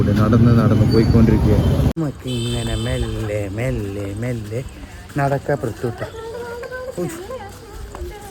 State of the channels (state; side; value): identical; both; correlation 1.00